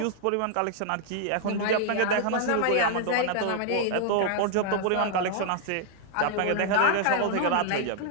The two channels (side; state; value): both; different; correlation 0.00